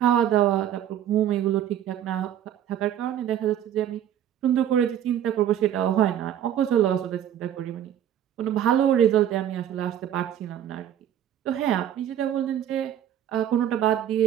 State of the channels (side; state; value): left; quieter; 10.6 dB